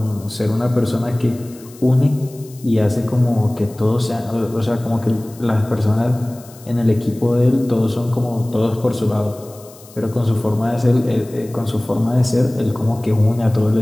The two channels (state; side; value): noise; left; hiss, 22 dB below the sound